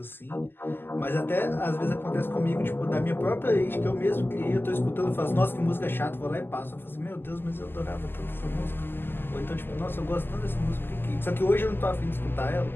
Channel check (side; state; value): right; late; 0.10 ms